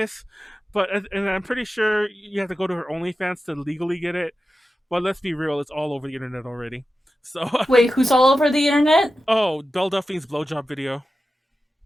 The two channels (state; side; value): normal; both; correlation 0.92